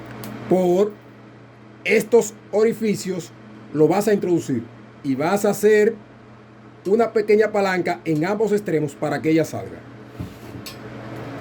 por estos orificios lo vas a introducir y vas a hacer una pequeña palanca en ambos extremos para que ella salga.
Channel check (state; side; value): identical; both; correlation 1.00